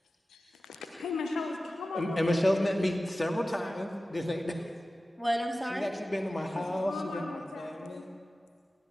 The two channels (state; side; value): normal; both; correlation 0.95